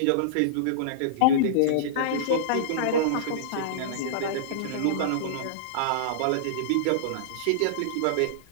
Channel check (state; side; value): different; both; correlation -0.03